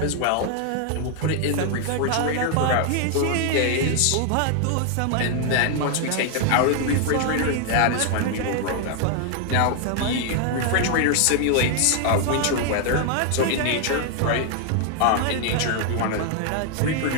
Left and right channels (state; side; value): different; both; correlation 0.00